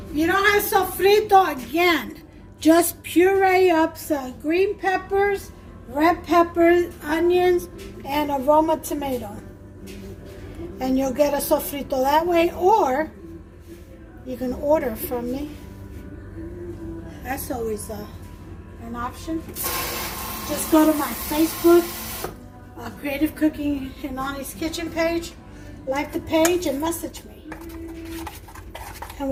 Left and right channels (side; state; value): both; identical; correlation 1.00